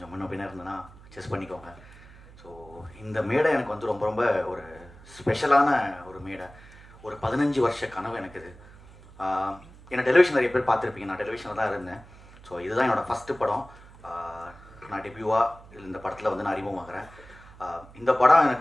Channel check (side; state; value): right; noise; hum, 21 dB below the sound